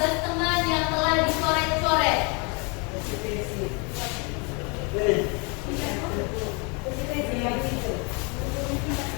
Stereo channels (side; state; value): right; quieter; 32.4 dB